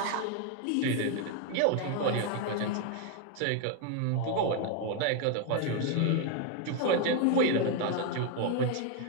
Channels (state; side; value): different; both; correlation 0.01